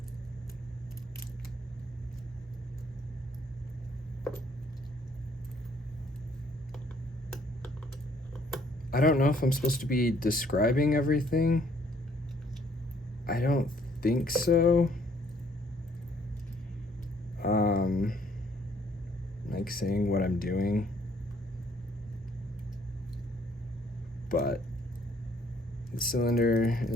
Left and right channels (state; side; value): normal; both; correlation 0.63